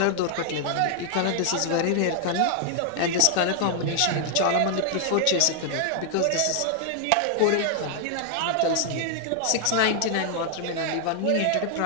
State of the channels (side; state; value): both; different; correlation 0.00